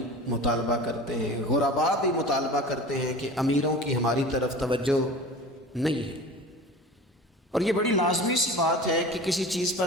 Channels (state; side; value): normal; both; correlation 0.37